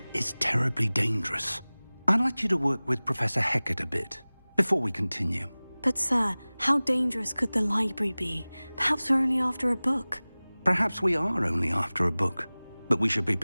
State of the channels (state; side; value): inverted; both; correlation -1.00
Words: is terribly dangerous. I'd like you to work with Professor Hecat a bit before we continue. But, sir, how dangerous could the library be? Perhaps we're only after a book. Perhaps we are only after a book, but we should be